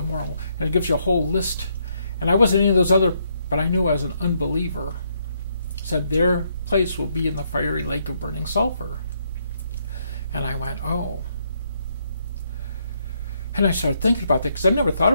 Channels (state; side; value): inverted; both; correlation -0.74